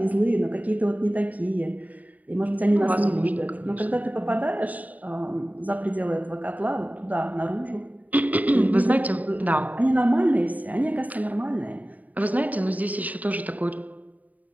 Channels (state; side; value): late; left; 0.074 ms